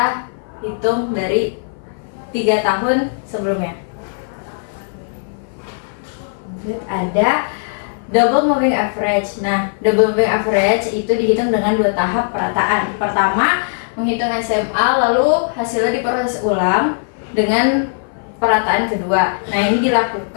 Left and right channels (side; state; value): right; silent; 57 dB below the other